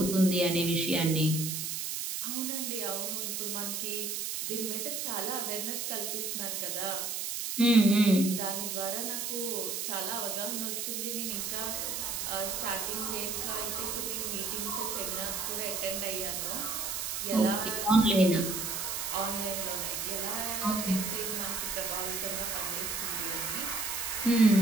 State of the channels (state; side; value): noise; right; hiss, 3 dB below the sound